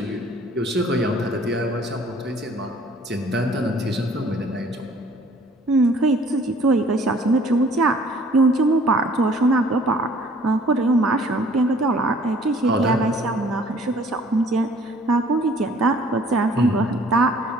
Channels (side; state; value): both; normal; correlation 0.55